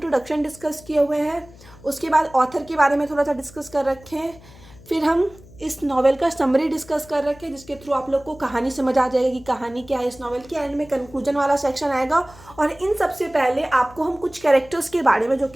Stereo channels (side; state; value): left; noise; hum, 22 dB below the sound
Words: डिस्कस किए हुए हैं, उसके बाद ऑथर के बारे में थोड़ा सा डिस्कस कर रखे हैं, फिर हम इस नॉवेल का समरी डिस्कस कर रखे हैं जिसके थ्रू आप लोग को कहानी समझ आ जाएगी कि कहानी क्या है इस नॉवेल की। एंड में कंक्लूजन वाला सेक्शन आएगा और इन सबसे पहले आपको हम कुछ कैरेक्टर्स के बारे में जो